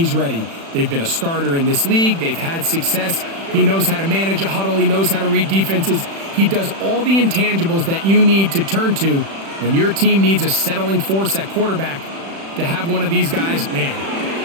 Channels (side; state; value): left; late; 36 ms